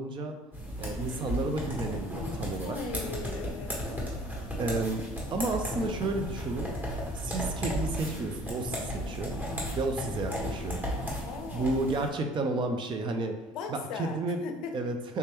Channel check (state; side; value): normal; both; correlation 0.53